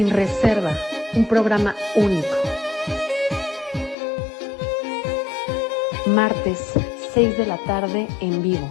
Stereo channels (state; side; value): drops out; right; at 4.0 s